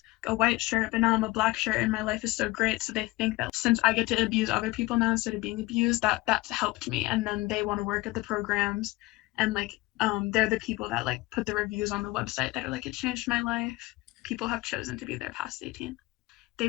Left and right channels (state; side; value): quieter; right; 20.8 dB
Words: a white shirt, but now I'm a black shirt and my life is so great. So they think that since I get to abuse other people now instead of being abused, that's helped me. And then they want to work at the programs and like they're the people that like put the reviews on the website that are like, it changed my life. People have chosen to be there past 18.